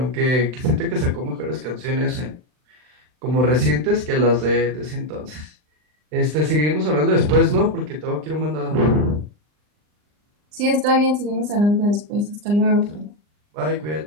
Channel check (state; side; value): late; left; 39 ms